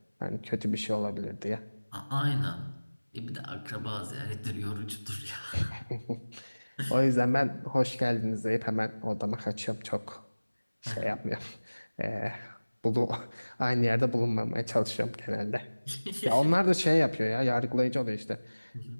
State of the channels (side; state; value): both; inverted; correlation -1.00